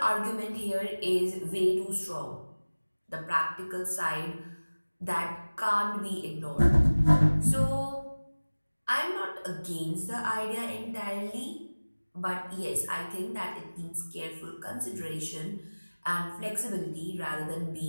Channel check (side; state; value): both; inverted; correlation -1.00